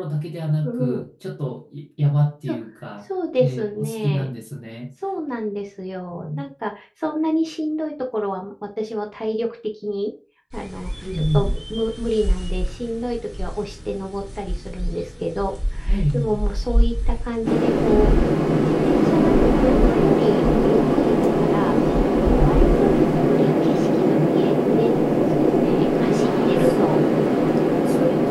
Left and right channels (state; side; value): identical; both; correlation 1.00